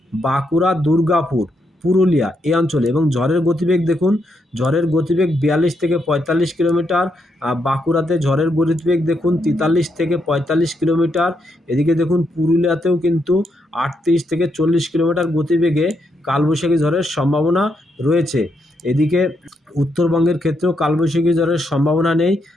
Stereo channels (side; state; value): both; normal; correlation 0.79